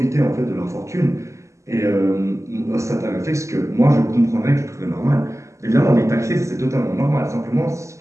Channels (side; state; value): left; late; 0.14 ms